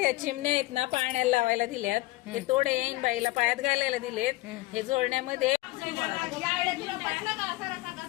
चिमण्या आहेत ना पाण्याला लावायला दिल्यात. हे तोडे येईन बाईला पायात घालायला दिलेत. हे जोडण्यामध्ये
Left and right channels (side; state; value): right; quieter; 19.9 dB